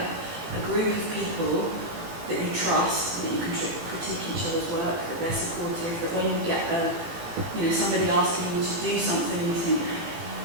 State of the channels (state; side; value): late; left; 18 ms